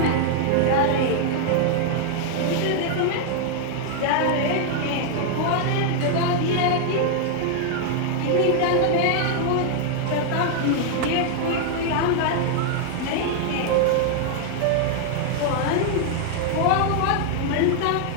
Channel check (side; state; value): both; different; correlation 0.00